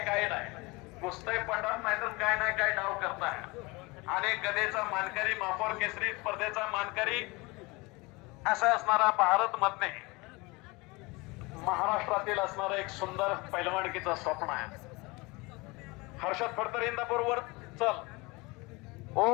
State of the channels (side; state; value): right; quieter; 24.8 dB